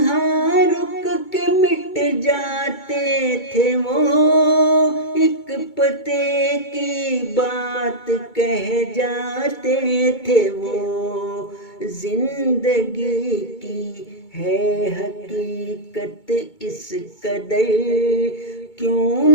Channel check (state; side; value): late; right; 2.2 ms